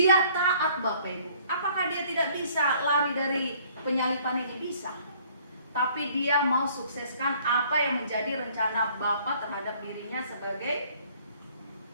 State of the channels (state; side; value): inverted; both; correlation -0.57